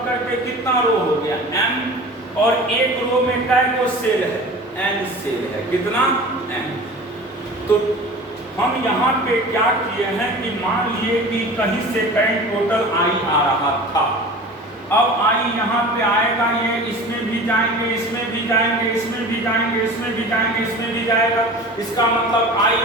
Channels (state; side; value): normal; both; correlation 0.38